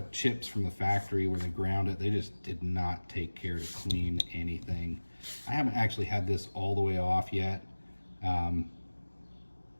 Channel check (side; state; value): both; inverted; correlation -1.00